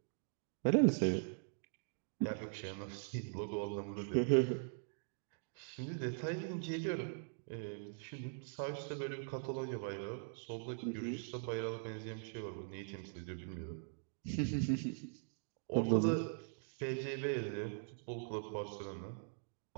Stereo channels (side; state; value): left; silent; digital silence